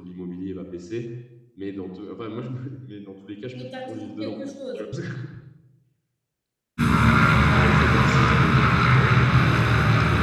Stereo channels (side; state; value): both; identical; correlation 1.00